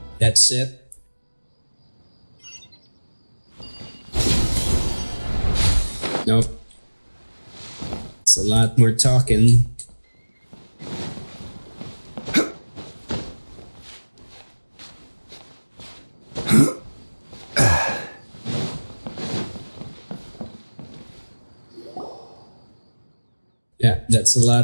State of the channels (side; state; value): both; inverted; correlation -1.00